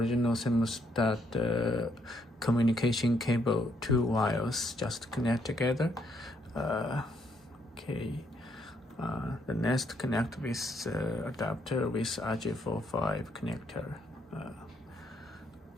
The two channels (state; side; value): normal; both; correlation 0.73